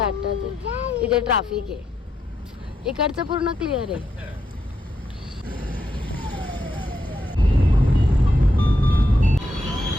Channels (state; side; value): normal; both; correlation 0.81